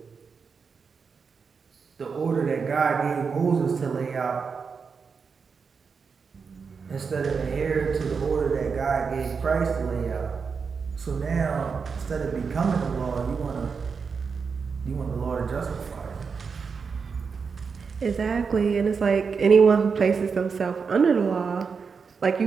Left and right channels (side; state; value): left; quieter; 5.5 dB